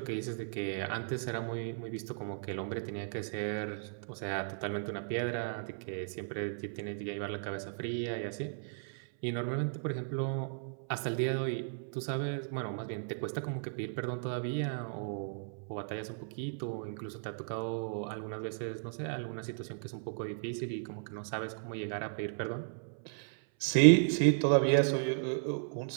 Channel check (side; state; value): left; silent; 54 dB below the other